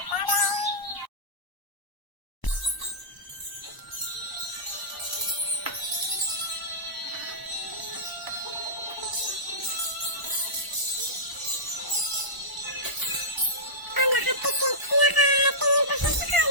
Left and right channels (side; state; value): right; late; 1.0 ms